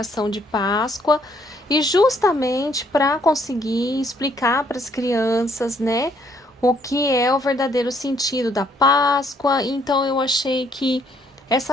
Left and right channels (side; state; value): both; normal; correlation 0.67